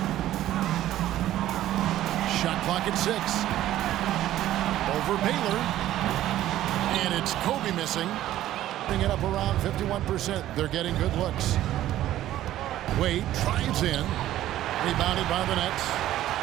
Shot clock at 6. Over Baylor. And it's Kobe missing. Bring it up around 51%. They're getting good looks. Wade drives in. Rebounded by the Nets.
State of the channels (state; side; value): quieter; left; 13.5 dB